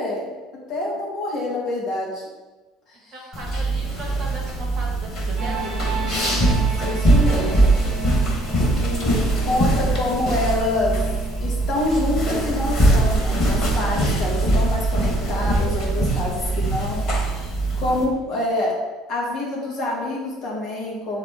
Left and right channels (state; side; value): normal; both; correlation 0.65